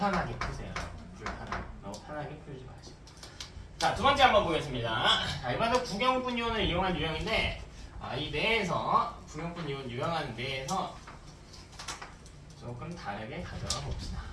푸세요. 너무 편하게 풀지 마시고. 자, 두 번째 한번 보겠습니다. 이번에도 구경분 이온을 이용한 유형인데 이 내에서 구경분 이온 유형하는 내에서 조금 다르게 가져가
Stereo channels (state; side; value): identical; both; correlation 1.00